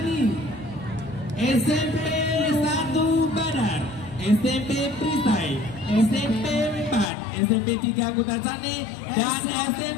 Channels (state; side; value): drops out; right; at 7.1 s